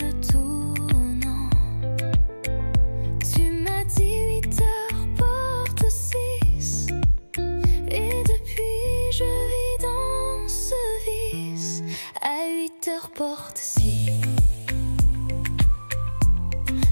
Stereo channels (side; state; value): both; inverted; correlation -1.00